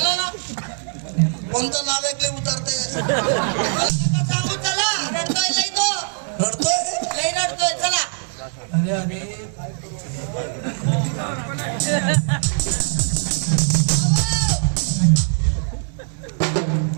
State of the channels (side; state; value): left; silent; 65 dB below the other